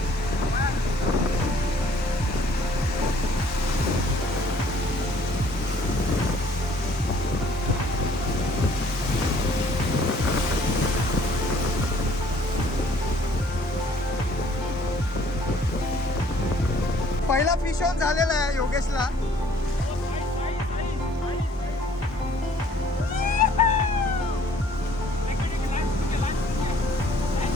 पहिला फिश ऑन झालेला आहे योगेशला.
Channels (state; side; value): normal; both; correlation 0.58